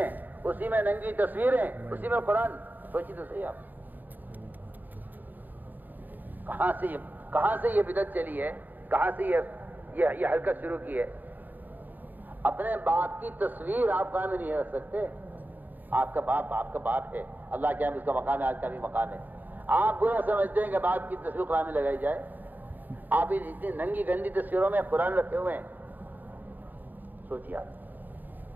اسی میں ننگی تصویریں، اسی میں قرآن. سوچی تو صحیح آپ کہاں سے یہ بدعت چلی ہے، کہاں سے یہ حرکت شروع کی ہے. اپنے باپ کی تصویر آپ قائم نہیں رکھ سکتے. آپ کا باپ ہے، اللہ کے ہم اس کا مقام ہے، آج کا بھی مقام ہے. آپ برا سمجھتے ہیں کہ باپ کی تصویر قرآن میں لگائی جائے. آپ اتنی ننگی گندی تصویروں میں قرآن رکھے ہوئے ہیں. سوچیے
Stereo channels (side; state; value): left; late; 0.087 ms